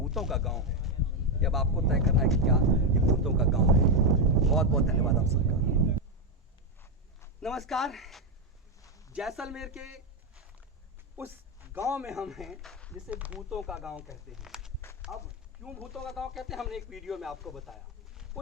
का गाँव है। ये अब आपको तय करना है कि क्या ये भूतों का गाँव है। बहुत बहुत धन्यवाद आप सबका। नमस्कार। जैसलमेर के उस गांव में हम हैं जिसे भूतों का गांव कहते हैं। अब क्यों भूतों का गांव कहते हैं, हमने एक वीडियो में आपको बताया।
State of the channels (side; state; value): both; normal; correlation 0.06